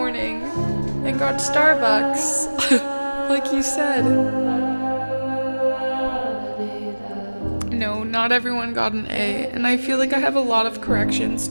and got Starbucks. Like you said. No, not everyone got an A, and I feel like I have a lot of corrections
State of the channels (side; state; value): both; inverted; correlation -1.00